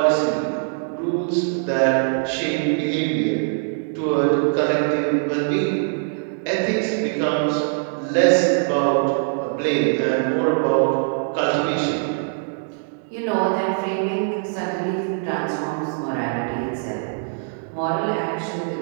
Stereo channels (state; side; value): silent; left; digital silence